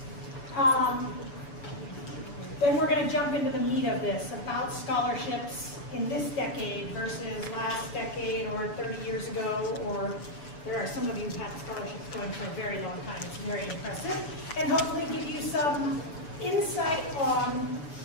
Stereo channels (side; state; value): right; late; 7.0 ms